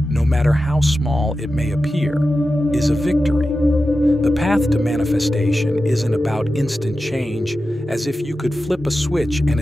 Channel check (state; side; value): normal; both; correlation 0.92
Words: no matter how small it may appear, is a victory. The path to manifestation isn't about instant change, as if you could flip a switch and